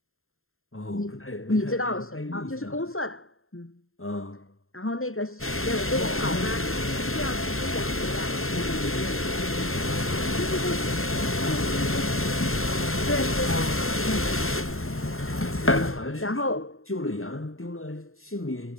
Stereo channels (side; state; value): right; late; 0.61 ms